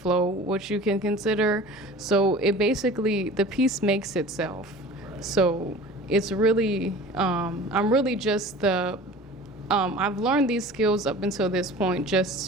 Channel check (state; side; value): normal; both; correlation 0.41